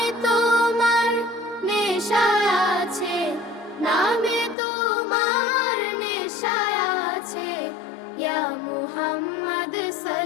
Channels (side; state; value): right; drops out; at 4.5 s